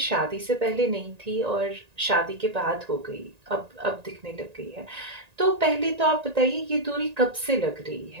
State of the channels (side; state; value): left; late; 1.9 ms